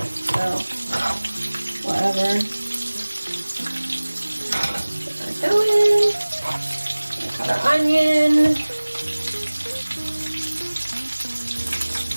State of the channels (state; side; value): inverted; both; correlation -1.00